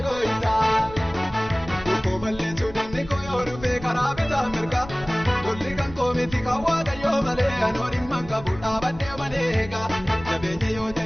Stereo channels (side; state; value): left; noise; rumble, 16 dB below the sound